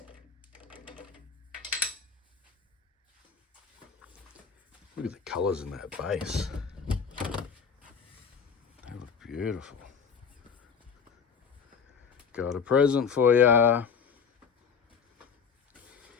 Look at the colours in that base. They look beautiful. Got a present for ya.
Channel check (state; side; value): quieter; right; 6.3 dB